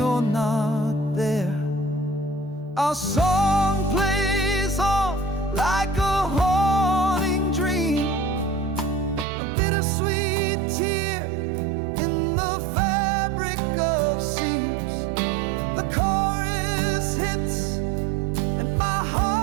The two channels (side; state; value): left; drops out; at 9.2 s